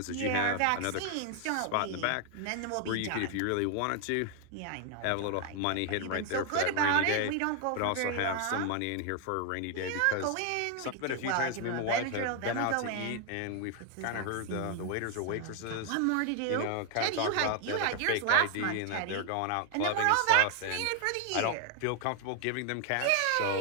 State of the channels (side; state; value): both; different; correlation 0.00